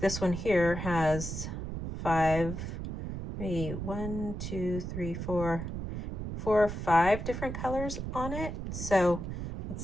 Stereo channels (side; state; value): right; noise; rumble, 5 dB below the sound